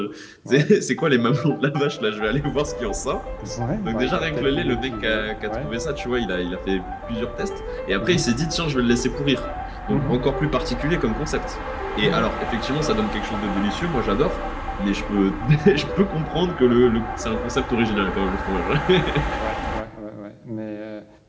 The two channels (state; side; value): identical; both; correlation 1.00